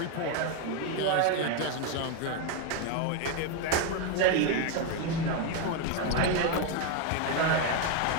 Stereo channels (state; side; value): different; both; correlation 0.02